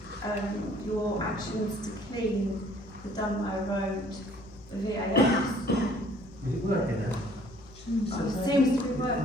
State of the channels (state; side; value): noise; left; hum, 21 dB below the sound